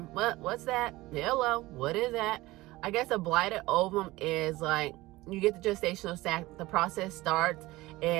What's that? Hello, what is that? I guess a blighted ovum is like, you get the gestational sac, the process starts,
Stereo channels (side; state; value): left; quieter; 19.3 dB